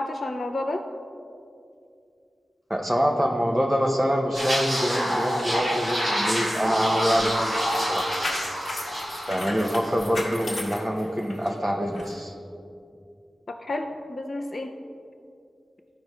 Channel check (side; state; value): both; normal; correlation 0.95